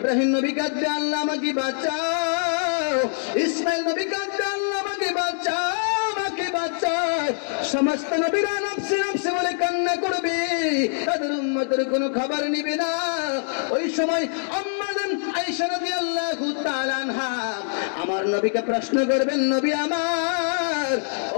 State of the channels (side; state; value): right; silent; 63 dB below the other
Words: নবী কাঁদবে, আল্লাহ আমাকে বাঁচাও। ইসমাইল নবী কাঁদবে, আল্লাহ আমাকে বাঁচাও, আমাকে বাঁচাও। সমস্ত নবীরা নফসি নফসি বলে কান্না করবে, তাদের উম্মতের কোনো খবর নিবে না। ওই সময় আম্মা আয়েশা রাদিয়াল্লাহু তাআলা আনহা আমার নবীকে প্রশ্ন করবেন, নবী আমার,